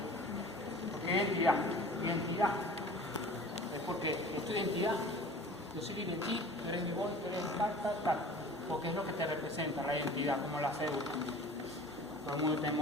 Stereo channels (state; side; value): normal; both; correlation 0.43